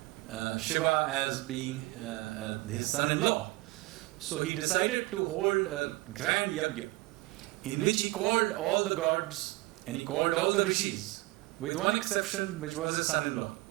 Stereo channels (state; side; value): quieter; left; 21.5 dB